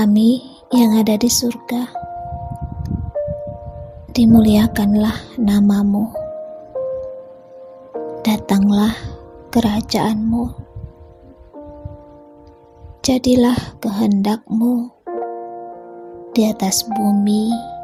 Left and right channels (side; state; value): both; identical; correlation 1.00